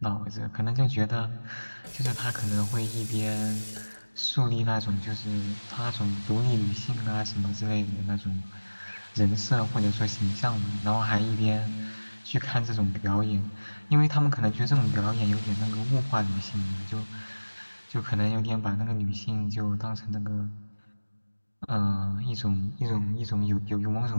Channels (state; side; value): inverted; both; correlation -1.00